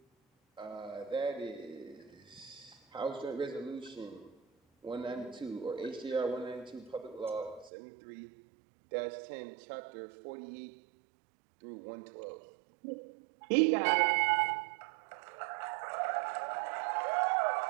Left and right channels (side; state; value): left; drops out; at 7.7 s